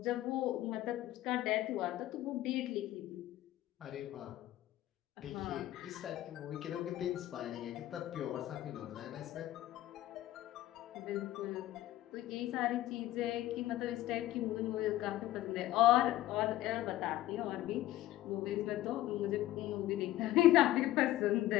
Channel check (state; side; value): quieter; right; 14.9 dB